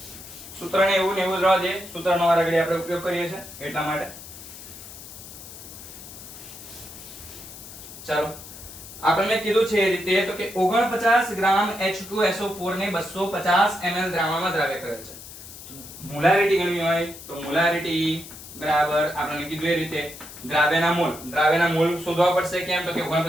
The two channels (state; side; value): noise; left; hiss, 15 dB below the sound